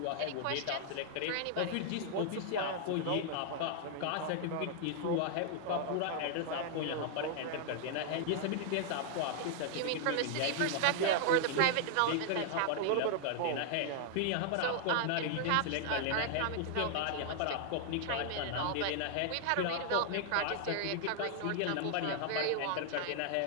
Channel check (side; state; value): both; different; correlation 0.00